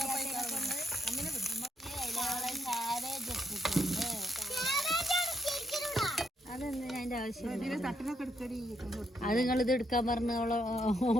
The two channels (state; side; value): normal; both; correlation 0.76